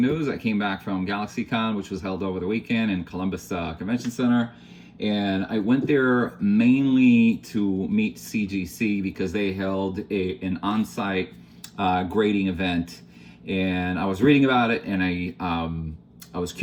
I came back from Galaxycon, which was held over the weekend in Columbus Convention Center. And I went there mainly to meet CGC because they held an on-site grading event. And I was reading about it and I was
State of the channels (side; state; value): both; identical; correlation 1.00